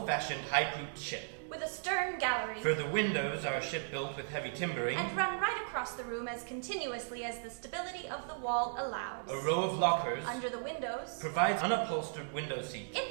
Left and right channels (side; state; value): left; silent; digital silence